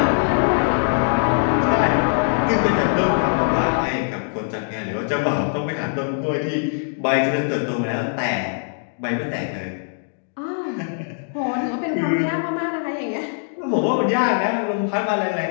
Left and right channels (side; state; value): right; silent; digital silence